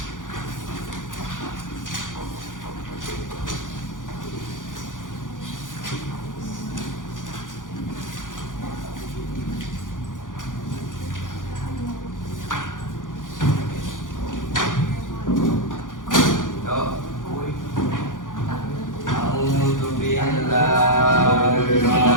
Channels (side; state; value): right; late; 0.88 ms